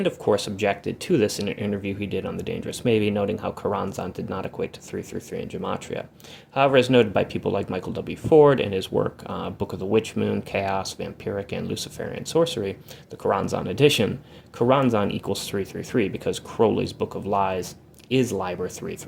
of course, objected to this in an interview he did on The Dangerous Maybe, noting how Choronzon did not equate to 333 in Gematria. However, as noted by people like Michael W. Ford in his work Book of the Witch Moon, Chaos, Vampiric, and Luciferian Sorcery, the Choronzon edition, Choronzon equals 333 because Crowley's Book of Lies is Liber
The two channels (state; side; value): identical; both; correlation 1.00